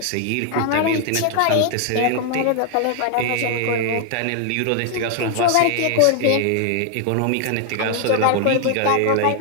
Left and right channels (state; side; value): different; both; correlation 0.00